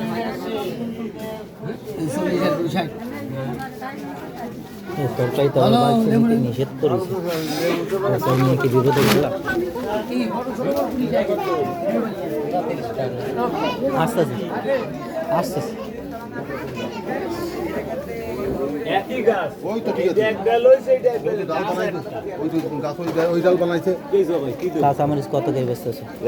আর 20 তরকারি তো নিষেধ করেছে, নিয়ে কি বিরোধী গেলাম। আস্তে আস্তে আস্তে আস্তে একই গাছ, ওই তো ঠিক আছে, এক ডাল হইছে, এটা এক ডাল। ডাল বানাইছে, ওই তো গাছ ওই ডাল বানাইছে। কাঁচা মরিচ কত করে বেচতেছে?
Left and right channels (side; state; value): both; identical; correlation 1.00